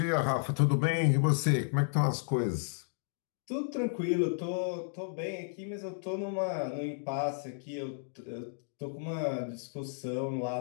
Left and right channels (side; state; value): right; silent; digital silence